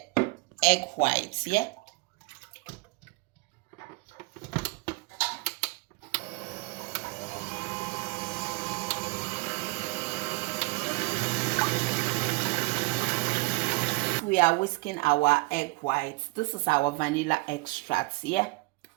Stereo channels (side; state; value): left; quieter; 25.5 dB